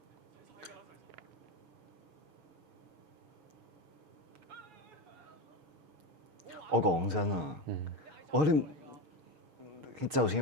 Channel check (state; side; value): late; left; 6.5 ms